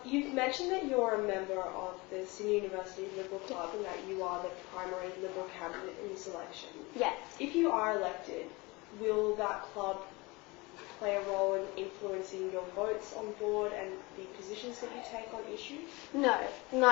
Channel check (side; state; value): right; quieter; 24.6 dB